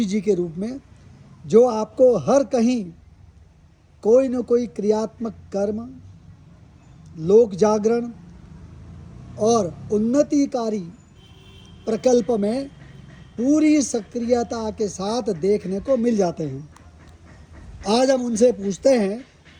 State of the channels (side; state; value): both; identical; correlation 1.00